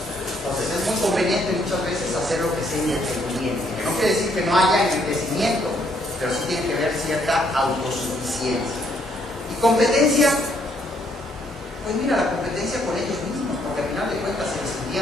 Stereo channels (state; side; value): normal; both; correlation 0.70